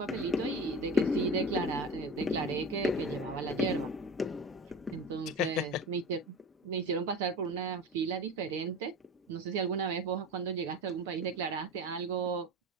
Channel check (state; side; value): normal; both; correlation 0.31